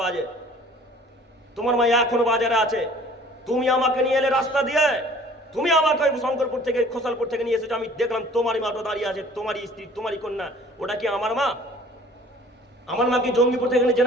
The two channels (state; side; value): normal; both; correlation 0.51